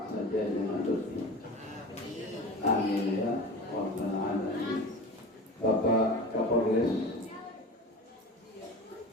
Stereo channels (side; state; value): both; normal; correlation 0.33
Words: saja dengan lebih. Amin ya Rabbal alamin. Bapak Kapolres